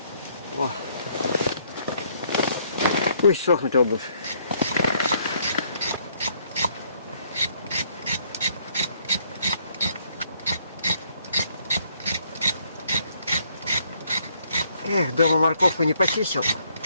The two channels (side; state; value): both; inverted; correlation -0.67